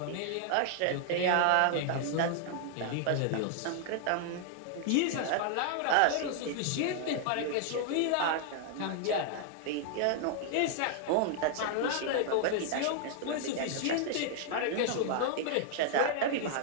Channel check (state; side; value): different; both; correlation 0.00